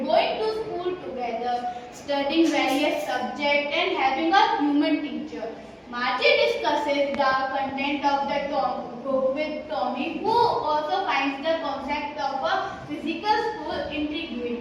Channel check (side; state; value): both; identical; correlation 1.00